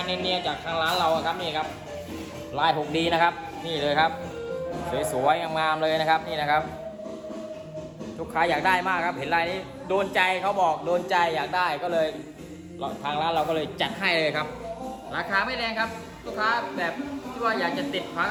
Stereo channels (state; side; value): identical; both; correlation 1.00